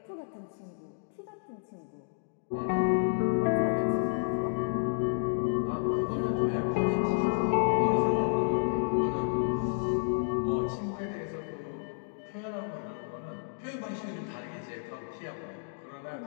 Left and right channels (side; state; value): right; silent; digital silence